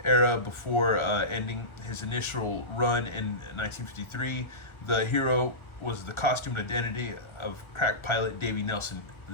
era before ending his initial run in 1953. The hero was the costumed identity of crack pilot Davy Nelson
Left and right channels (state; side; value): late; right; 1.3 ms